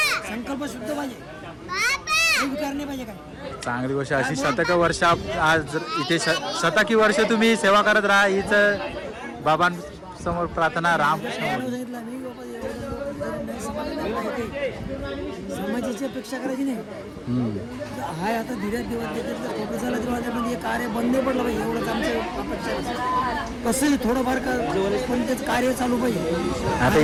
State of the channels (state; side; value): identical; both; correlation 1.00